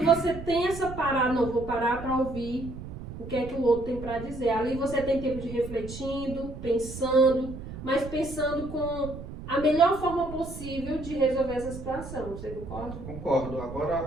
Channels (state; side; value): noise; right; rumble, 11 dB below the sound